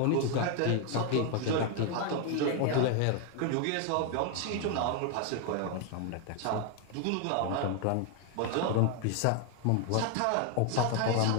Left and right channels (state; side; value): different; both; correlation 0.01